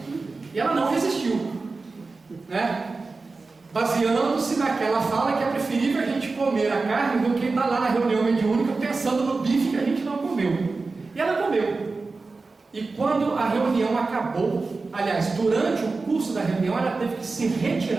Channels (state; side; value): quieter; left; 3.9 dB